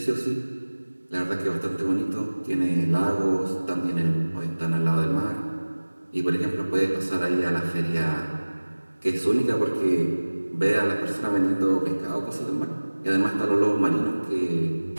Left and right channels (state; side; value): inverted; both; correlation -1.00